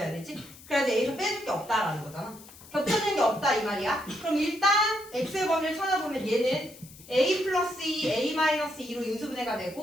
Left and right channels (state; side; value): noise; left; hiss, 20 dB below the sound